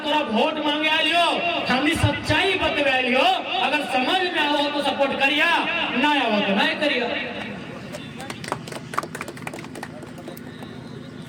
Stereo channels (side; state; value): both; identical; correlation 1.00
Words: तोरा वोट मांगे लियो, हमने सच्चाई बतवा लियो। अगर समझ में आओ तो सपोर्ट करिया, ना आओ तो नहीं करिया।